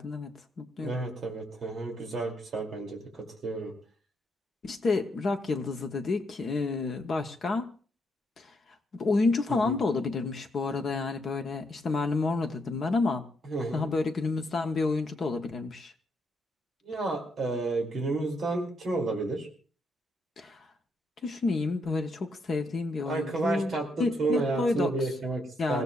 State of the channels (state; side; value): normal; both; correlation 0.77